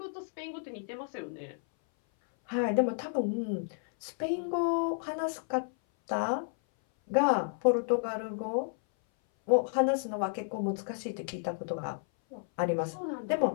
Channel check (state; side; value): silent; right; 57 dB below the other